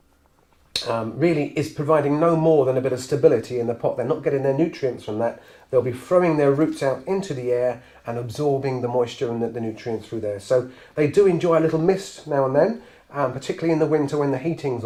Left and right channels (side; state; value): both; identical; correlation 1.00